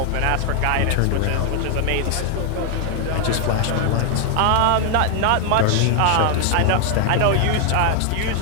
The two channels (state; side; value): different; both; correlation 0.00